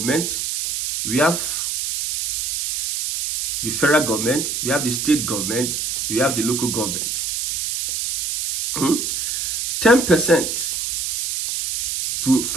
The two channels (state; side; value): noise; right; hiss, 2 dB below the sound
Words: We have the federal government, we have the state government, we have the local government. 10% to